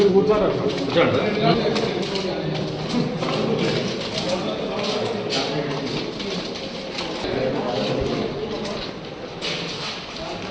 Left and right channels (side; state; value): both; identical; correlation 1.00